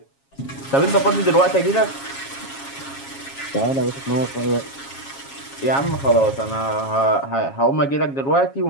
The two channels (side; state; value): right; late; 7.3 ms